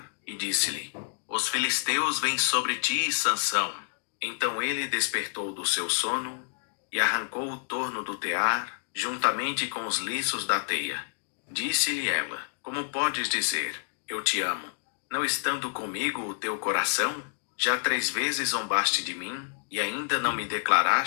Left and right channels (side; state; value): right; silent; digital silence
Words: e disse-lhe: os filisteus vêm sobre ti, Sansão. Então ele despertou do seu sono e arrancou o torno do tear, juntamente com os liços da teia. Disse-lhe ela: Como podes dizer, eu te amo, não estando comigo o teu coração? Já 3 vezes zombaste de mim, e ainda não me